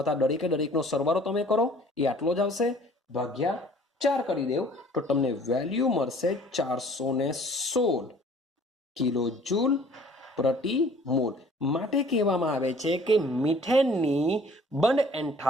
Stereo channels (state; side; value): normal; both; correlation 0.53